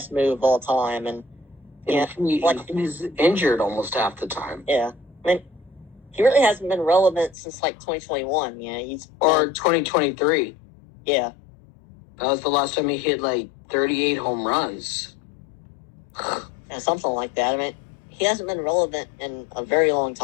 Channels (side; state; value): right; drops out; at 7.4 s